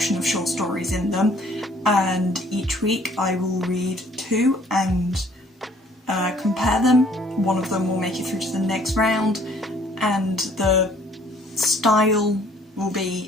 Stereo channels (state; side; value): normal; both; correlation 0.59